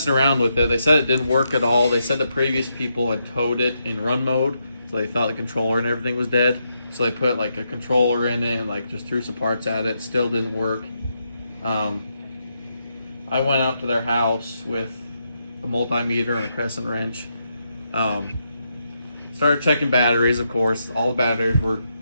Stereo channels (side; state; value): both; inverted; correlation -0.81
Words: around with it. They said it didn't work at all. They said the previous people had towed it in run mode, so they thought the controller and everything was dead. So they put like a controller in it and like just threw some parts at it. Still didn't work. I went out to their house with a multimeter and a crescent wrench. Started checking batteries, of course. All the batteries were